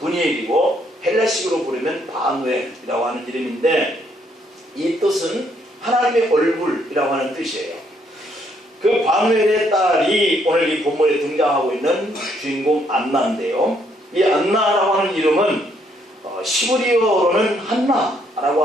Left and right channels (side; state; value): both; normal; correlation 0.70